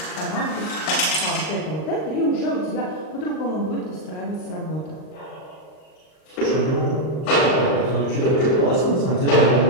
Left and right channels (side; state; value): right; late; 39 ms